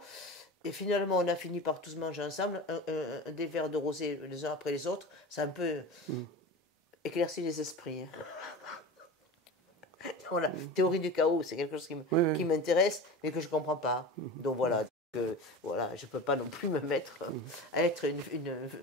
Et finalement, on a fini par tous manger ensemble des verres de rosé les uns après les autres. Ça a un peu éclairci les esprits. Voilà, théorie du chaos, c'est quelque chose qui m'intéresse, mais que je ne comprends pas. Donc voilà. Voilà, je ne peux pas non plus me mettre à être une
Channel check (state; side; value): normal; both; correlation 0.31